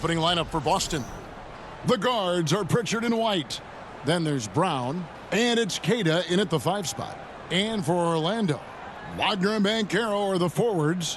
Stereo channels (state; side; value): identical; both; correlation 1.00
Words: lineup for Boston. The guards are Pritchard and White. Then there's Brown, and it's Queta in at the 5 spot. And for Orlando, Wagner and Banchero are the